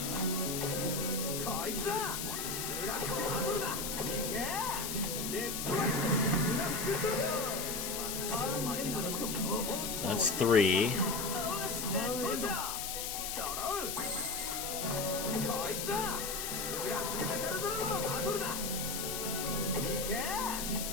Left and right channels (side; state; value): left; noise; hiss, 3 dB below the sound